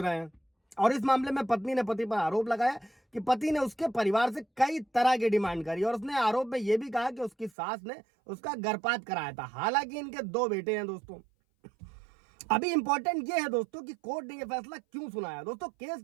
हैं और इस मामले में पत्नी ने पति पर आरोप लगाया कि पति ने उसके परिवार से कई तरह की डिमांड करी और उसने आरोप में यह भी कहा कि उसकी सास ने उसका गर्भपात कराया था। हालांकि इनके 2 बेटे हैं। दोस्तों अभी इंपॉर्टेंट ये है दोस्तों कि कोर्ट ने यह फैसला क्यों सुनाया। दोस्तों केस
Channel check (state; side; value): drops out; left; at 7.5 s